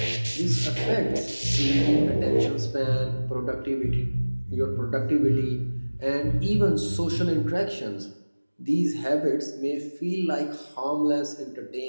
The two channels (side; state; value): both; inverted; correlation -1.00